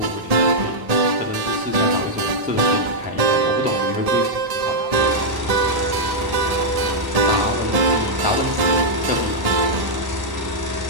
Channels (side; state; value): left; late; 1.1 ms